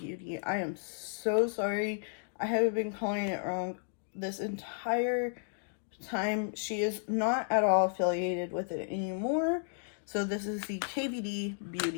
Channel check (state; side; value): silent; right; digital silence